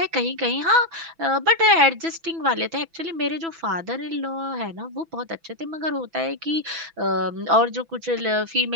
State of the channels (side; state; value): left; late; 6.0 ms